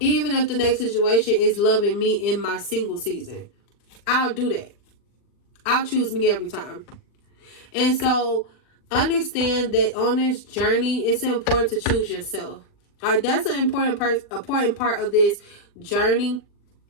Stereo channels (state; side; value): late; right; 39 ms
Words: if the next situation is loving me in my single season, I'll do that. I'll choose me every time. And so understand that on this journey, it's important to choose yourself. All right, that's an important part of this journey.